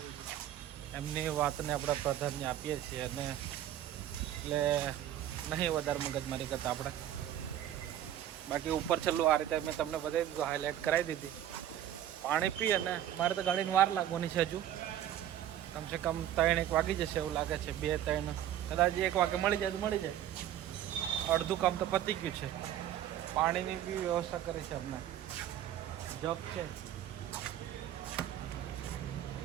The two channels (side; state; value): left; quieter; 11.6 dB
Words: એમની વાતને આપણે પ્રાધાન્ય આપીએ છીએ, અને એટલે નહીં વધારે મગજમારી કરતા આપણે. બાકી ઉપર છેલ્લું આ રીતે મેં તમને બતાવી દીધું, હાઇલાઇટ કરાવી દીધી. પાણી પી અને મારે તો ગાડીને વાર લાગવાની છે. હજુ કમસે કમ 3-1 વાગી જશે એવું લાગે છે. 2-3 કદાચ 1 વાગે મળી જાય તો મળી જાય. અડધું કામ તો પતી ગયું છે. પાણીની બી વ્યવસ્થા કરી છે અમને. જગ છે.